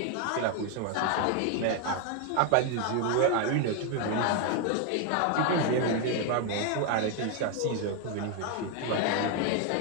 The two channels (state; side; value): different; both; correlation 0.01